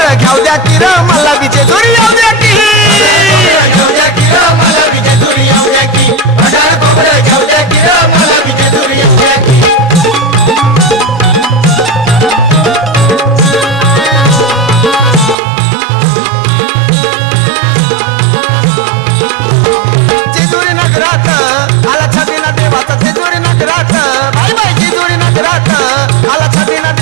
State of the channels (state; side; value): drops out; left; at 15.4 s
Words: घ्याव द्या की र मला बी जेजुरी याव द्या की घेऊ द्या की र मला बी जेजुरी येऊ द्या की भंडारा खोबरं घेऊ द्या की र मला बी जेजुरी येऊ द्या की जेजुरी नगरात आला छबिना देवाचा जेजुरी नगरात बाय बाय जेजुरी नगरात आला छबिना